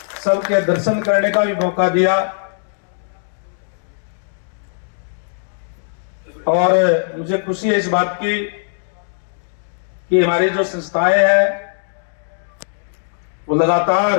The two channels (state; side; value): silent; right; digital silence